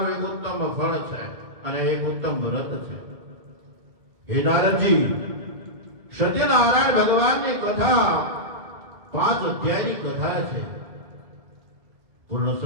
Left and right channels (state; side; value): late; left; 2.1 ms